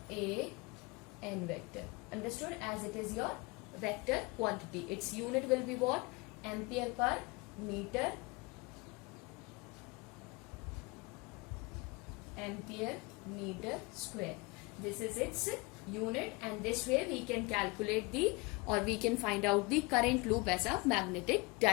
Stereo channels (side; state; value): right; quieter; 25.4 dB